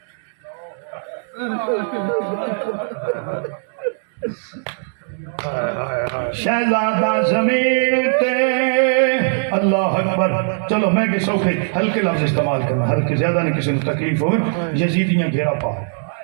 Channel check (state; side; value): silent; left; digital silence